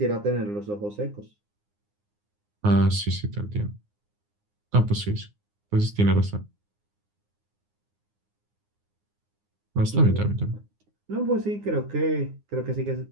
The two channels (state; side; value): late; left; 9.7 ms